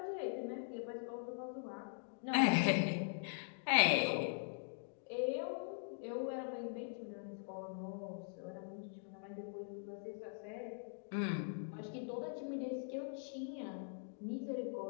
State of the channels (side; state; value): right; silent; digital silence